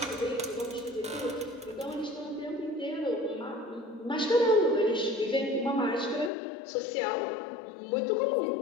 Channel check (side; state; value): right; drops out; at 6.3 s